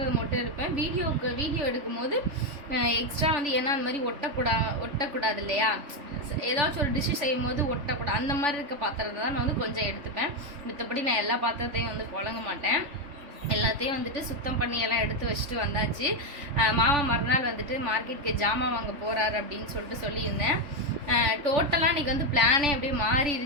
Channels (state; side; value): late; left; 3.4 ms